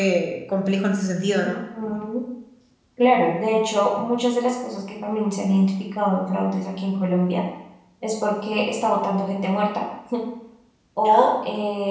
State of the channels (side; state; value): both; identical; correlation 1.00